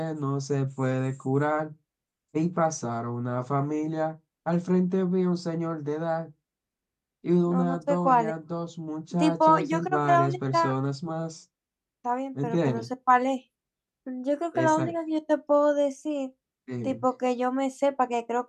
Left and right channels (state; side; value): identical; both; correlation 1.00